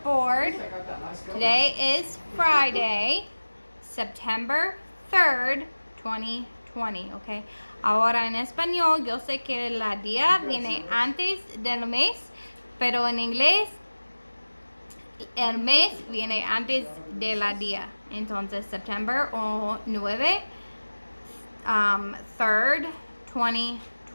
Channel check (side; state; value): both; inverted; correlation -1.00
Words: Today is Friday, September 3rd, 2020. Okay. Ahora en español, yo sé que la día viene antes del mes, pero en inglés el mes viene antes de la día. Entonces, September 9, 3rd,